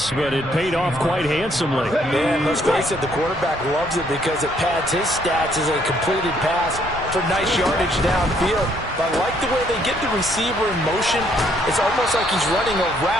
but it paid off quite handsomely. Man, let's face it, the quarterback loves it because it pads his stats as a completed pass for nice yardage downfield. But I like the way they get the receiver in motion. It's almost like he's running a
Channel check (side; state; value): both; normal; correlation 0.68